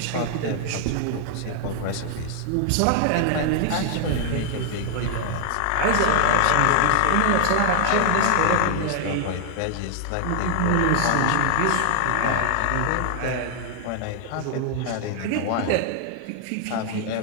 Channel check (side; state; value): both; different; correlation 0.00